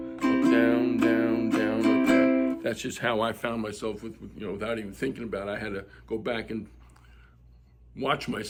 up, down, down, down, up, down. That's just how I found myself without even thinking about it. I had to go back and watch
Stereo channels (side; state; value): both; identical; correlation 1.00